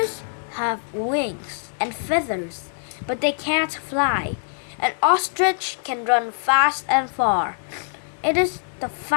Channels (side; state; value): right; silent; 63 dB below the other